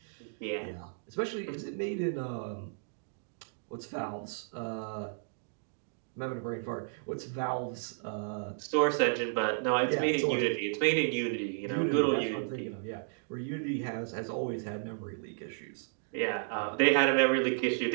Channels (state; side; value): silent; left; digital silence